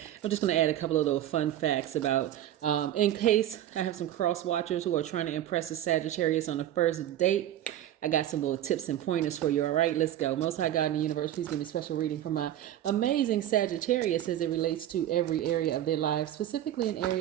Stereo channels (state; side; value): quieter; left; 12.1 dB